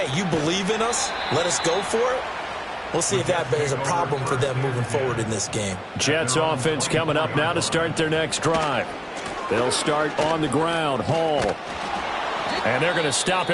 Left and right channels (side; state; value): both; identical; correlation 1.00